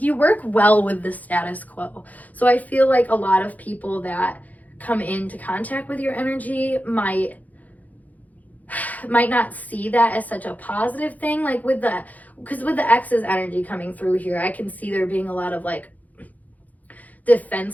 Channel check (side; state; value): right; late; 0.078 ms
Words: work well with the status quo. So I feel like a lot of people that come into contact with your energy might not see that as such a positive thing. Like because with the Exes energy coming through here, I can see there being a lot of like